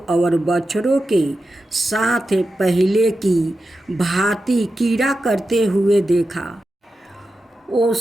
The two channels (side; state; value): both; normal; correlation 0.91